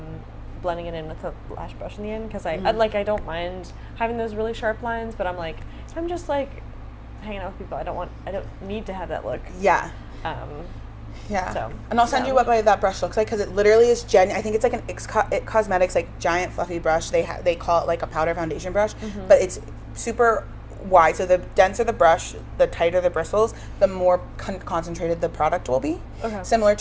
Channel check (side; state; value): both; identical; correlation 1.00